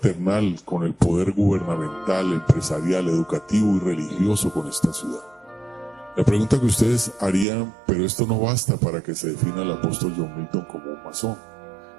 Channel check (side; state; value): left; drops out; at 7.5 s